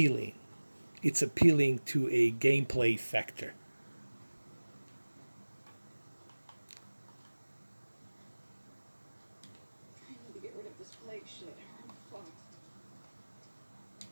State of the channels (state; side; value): inverted; both; correlation -1.00